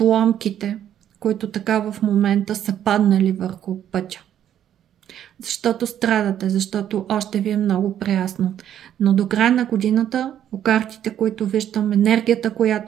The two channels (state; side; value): quieter; left; 10.4 dB